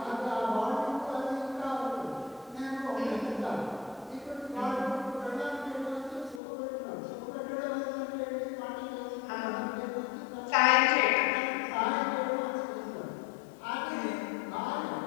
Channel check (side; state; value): right; drops out; at 6.4 s